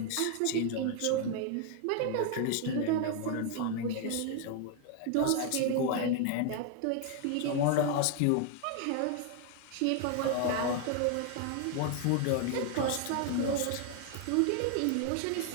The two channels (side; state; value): both; different; correlation 0.00